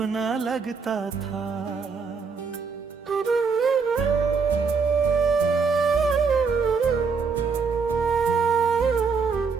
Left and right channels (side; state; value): left; quieter; 5.2 dB